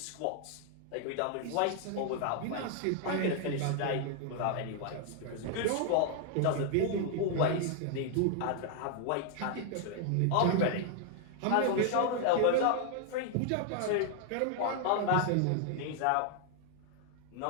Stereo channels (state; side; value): different; both; correlation 0.00